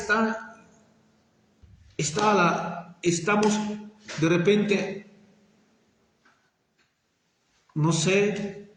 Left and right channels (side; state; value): both; identical; correlation 1.00